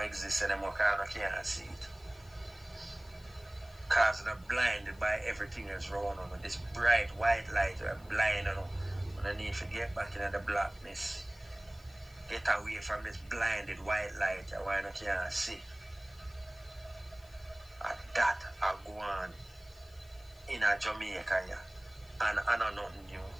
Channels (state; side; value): noise; left; hiss, 26 dB below the sound